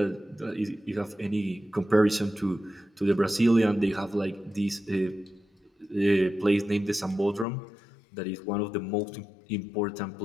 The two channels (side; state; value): right; drops out; at 7.5 s